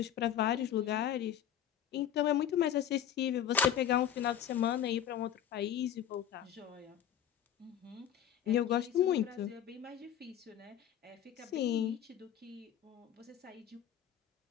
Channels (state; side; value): quieter; right; 10.0 dB